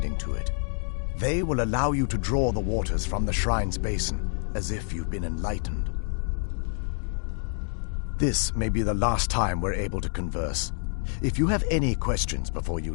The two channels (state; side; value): silent; right; digital silence